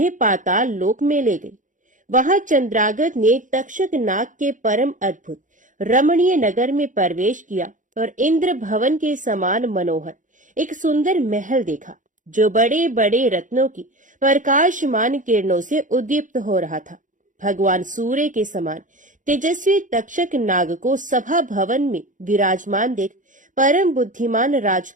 पाताल लोक में ले गई। वहां चंद्रागत ने तक्षक नाग के परम अद्भुत रमणीय नगर में प्रवेश किया और इंद्र भवन के समान मनोहर एक सुंदर महल देखा, जो बड़े बड़े रत्नों की प्रकाशमान किरणों से उद्दीप्त हो रहा था। भगवान सूर्य के समान तेजस्वी तक्षक नाग को सभा भवन में विराजमान देख परम बुद्धिमान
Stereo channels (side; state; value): left; late; 0.37 ms